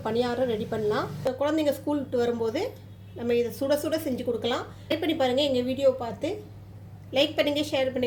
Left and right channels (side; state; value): both; identical; correlation 1.00